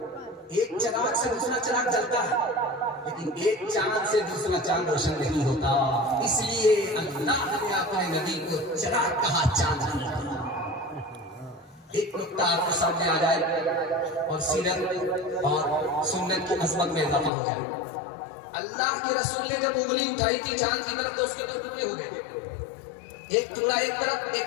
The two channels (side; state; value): right; drops out; at 17.3 s